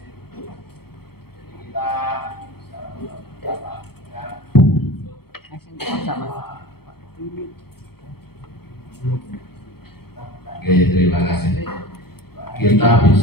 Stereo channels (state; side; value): late; right; 0.95 ms